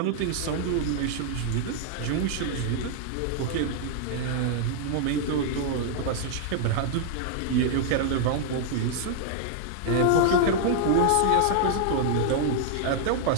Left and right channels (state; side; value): different; both; correlation -0.01